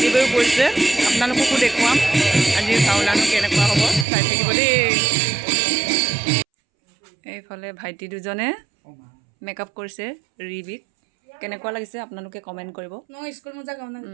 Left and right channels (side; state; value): left; drops out; at 4.0 s